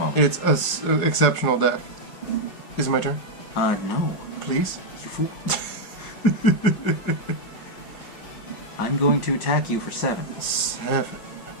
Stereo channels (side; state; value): right; late; 5.2 ms